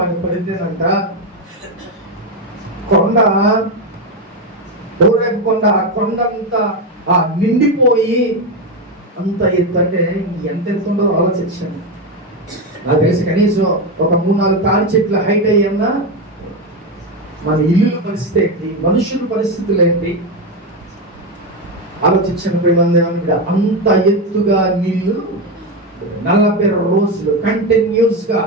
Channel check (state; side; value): normal; both; correlation 0.12